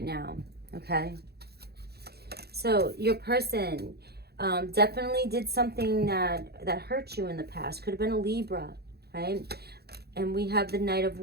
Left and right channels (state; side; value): late; left; 0.47 ms